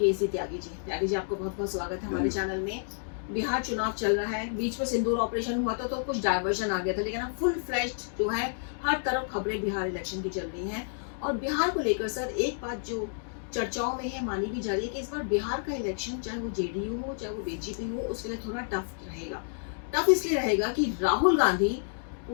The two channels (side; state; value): right; silent; digital silence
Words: त्यागी जी। त्यागी जी, आपको बहुत बहुत स्वागत है हमारे चैनल में। बिहार चुनाव चल रहा है, बीच में सिंदूर ऑपरेशन हुआ था तो कुछ डायवर्जन आ गया था, लेकिन अब फुल फ्लैश्ड जो है हर तरफ खबरें बिहार इलेक्शन की चल रही हैं। और बिहार को लेकर सर एक बात जो चर्चाओं में है, मानी भी जा रही है कि इस बार बिहार का इलेक्शन चाहे वो जेडीयू हो चाहे वो बीजेपी हो, उसके लिए थोड़ा टफ रहेगा। टफ इसलिए रहेगा कि राहुल गांधी